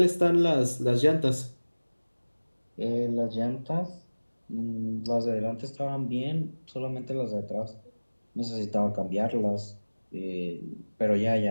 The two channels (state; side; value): inverted; both; correlation -1.00